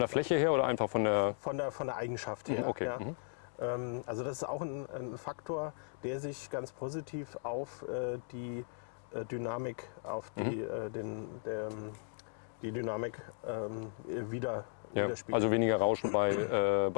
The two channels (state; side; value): silent; right; digital silence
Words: der Fläche her oder einfach von der... Von der Eigenschaft her. Okay. Ja. Also das ist auch ein Faktor, der sich ganz positiv auf die Dynamik, auf die Dynamik widerspiegelt. Also weniger Rauschen